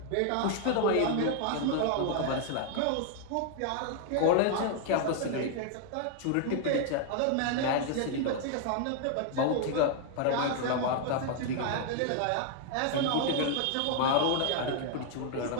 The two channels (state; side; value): different; both; correlation 0.00